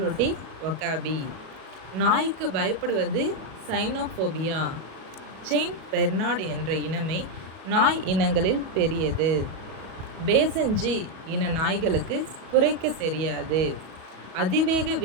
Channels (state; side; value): late; left; 37 ms